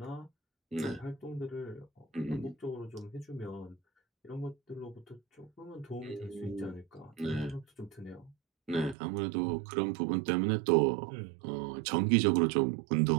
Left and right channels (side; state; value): left; drops out; at 9.0 s